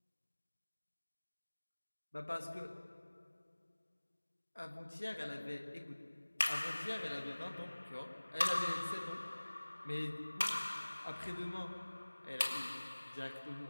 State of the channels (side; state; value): both; inverted; correlation -1.00